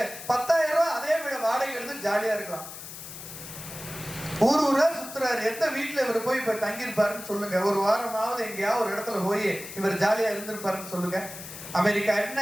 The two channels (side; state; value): left; noise; hiss, 12 dB below the sound